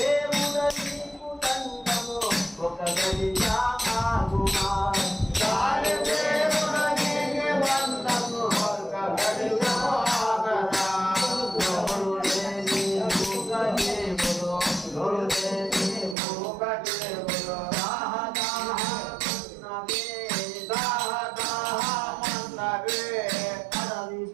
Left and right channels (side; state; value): left; drops out; at 16.2 s